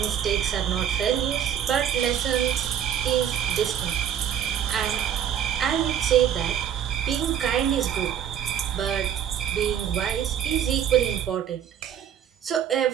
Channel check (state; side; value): quieter; left; 9.3 dB